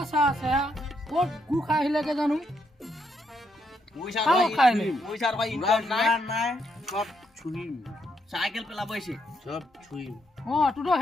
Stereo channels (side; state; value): both; normal; correlation 0.77